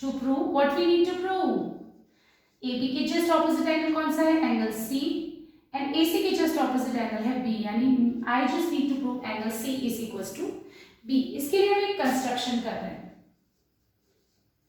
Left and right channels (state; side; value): identical; both; correlation 1.00